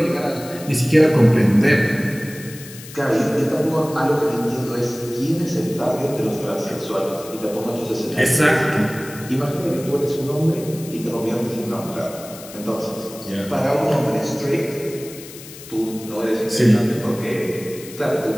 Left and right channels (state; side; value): noise; left; hiss, 16 dB below the sound